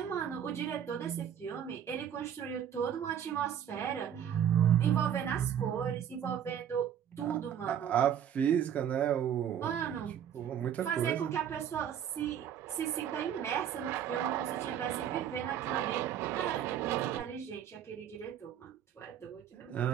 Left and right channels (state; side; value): quieter; left; 9.4 dB